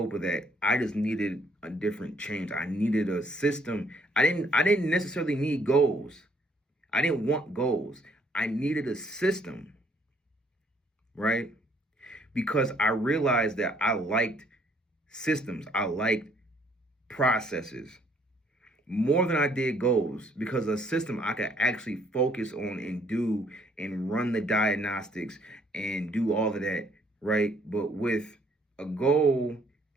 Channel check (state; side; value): normal; both; correlation 0.65